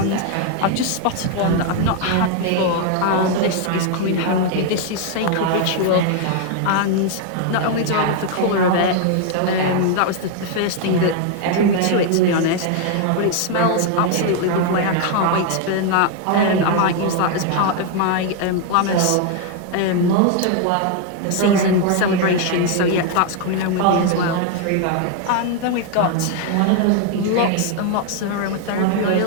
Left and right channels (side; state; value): both; different; correlation 0.00